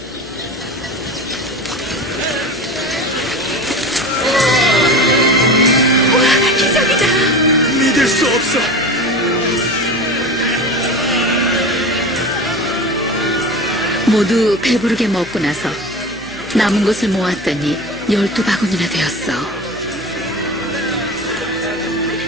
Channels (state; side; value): noise; left; hum, 21 dB below the sound